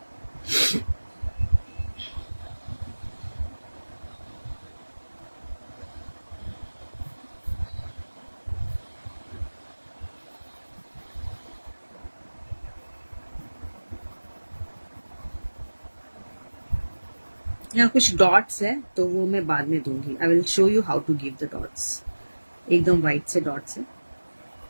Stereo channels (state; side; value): inverted; both; correlation -1.00